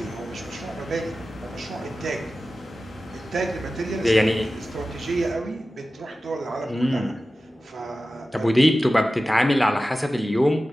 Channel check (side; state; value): both; normal; correlation 0.95